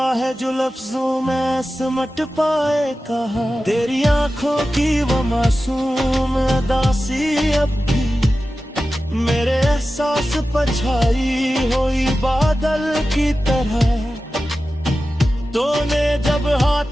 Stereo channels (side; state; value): both; normal; correlation 0.94